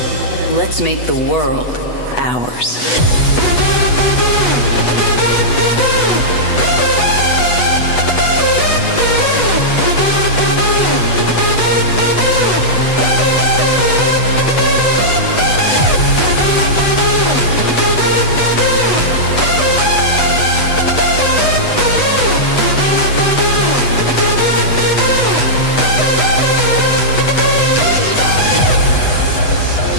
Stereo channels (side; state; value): right; late; 8.1 ms